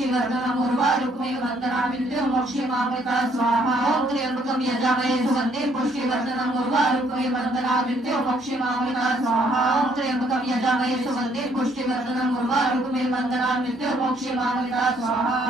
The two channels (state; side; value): normal; both; correlation 0.66